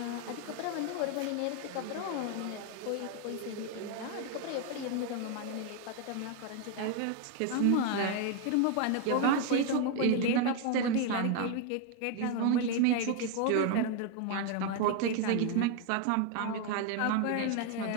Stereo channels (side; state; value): both; different; correlation 0.01